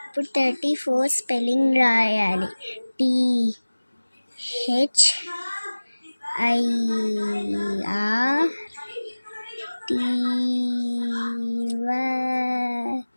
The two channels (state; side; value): inverted; both; correlation -1.00